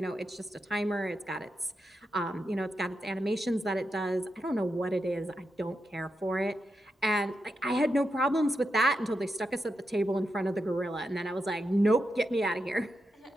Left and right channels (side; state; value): both; normal; correlation 0.86